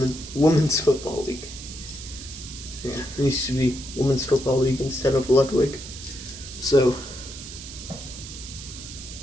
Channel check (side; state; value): right; noise; hiss, 12 dB below the sound